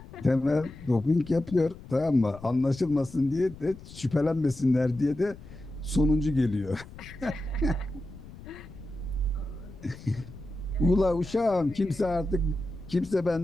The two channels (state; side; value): noise; left; rumble, 17 dB below the sound